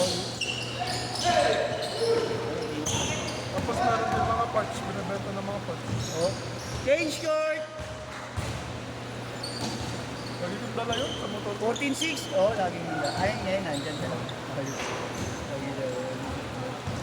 tapos meron din mga parts, binibenta ng mga parts. Oh. Change court! Lagi kong dala yun sa motor. 14-6. Oh, laging nila. Ayun ngayon, nandyan ka lang. Ayun. Lagi na yun.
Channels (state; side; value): identical; both; correlation 1.00